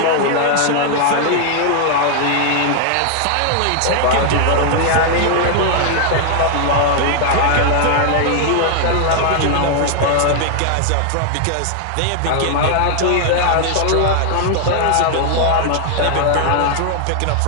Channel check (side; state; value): both; different; correlation 0.00